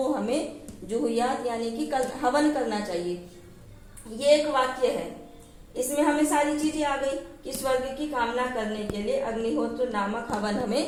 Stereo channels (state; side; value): identical; both; correlation 1.00